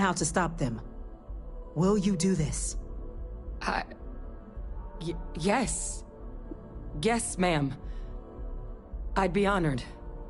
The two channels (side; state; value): both; identical; correlation 1.00